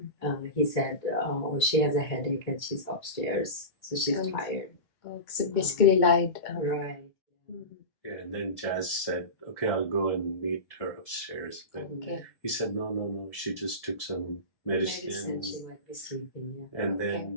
he said, oh, she has a headache and she's upstairs, so she's tired. So basically lied. Right. Yeah, and then Jazz said, okay, I'll go and meet her upstairs. But he said, no, she just took some medicine. And she might be sleeping, yeah. And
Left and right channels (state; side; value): late; right; 2.0 ms